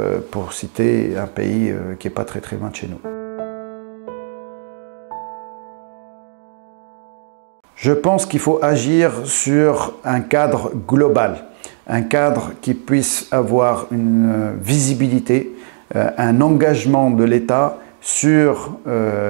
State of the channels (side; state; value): left; silent; 68 dB below the other